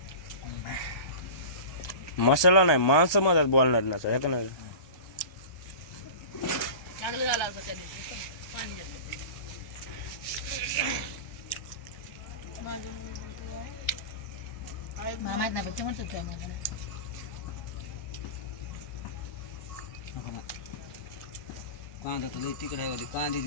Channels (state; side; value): late; right; 1.2 ms